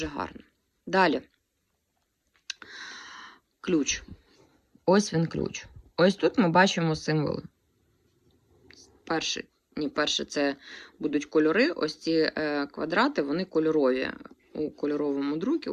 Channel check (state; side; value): identical; both; correlation 1.00